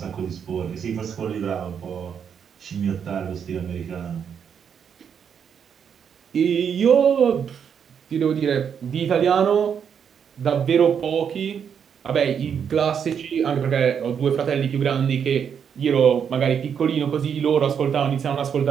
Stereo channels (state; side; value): quieter; left; 7.6 dB